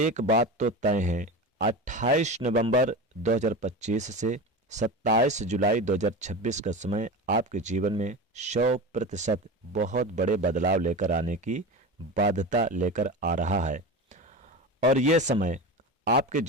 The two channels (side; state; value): both; normal; correlation 0.27